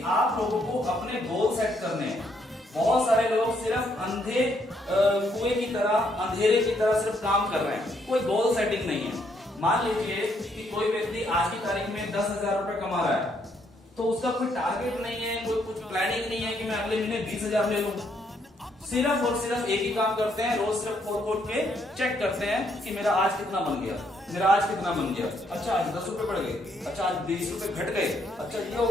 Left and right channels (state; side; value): normal; both; correlation 0.72